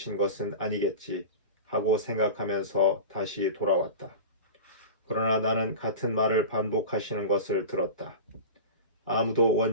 것은 아니겠지 하고 생각하면서 다시 돌아왔다. 그러나 나는 같은 말을 반복하시는 것을 들었다. 아무도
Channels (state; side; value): inverted; both; correlation -0.31